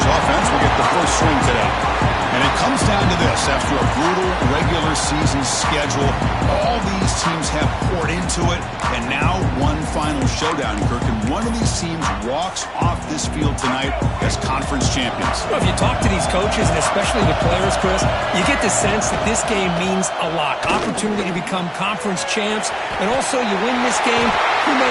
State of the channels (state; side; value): identical; both; correlation 1.00